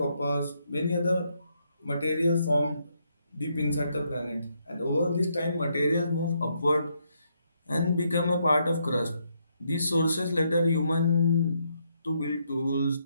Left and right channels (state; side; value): inverted; both; correlation -0.76